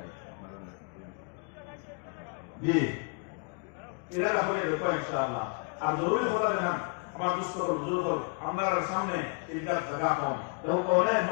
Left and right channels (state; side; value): quieter; right; 36.8 dB